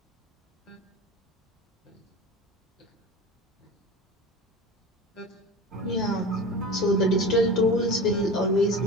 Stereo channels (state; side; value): normal; both; correlation 0.32